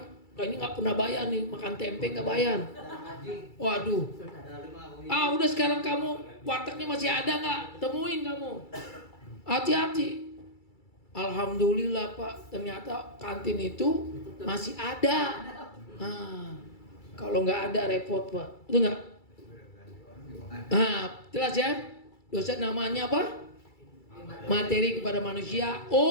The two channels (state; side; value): late; right; 2.3 ms